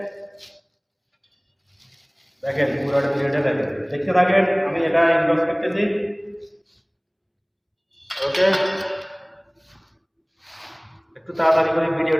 দেখেন পুরোটা ভিডিওটা দেখেন, দেখতে থাকেন, আমি এটা ইনবক্স করতেছি। ওকে, একটু তাড়াতাড়ি করে,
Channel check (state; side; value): identical; both; correlation 1.00